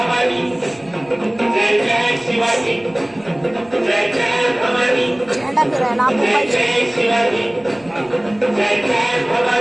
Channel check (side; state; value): right; noise; rumble, 28 dB below the sound